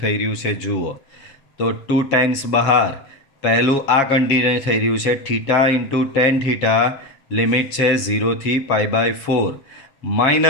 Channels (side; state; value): right; late; 7.2 ms